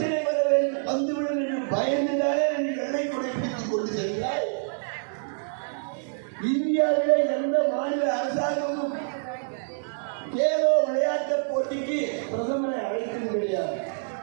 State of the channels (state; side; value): silent; left; digital silence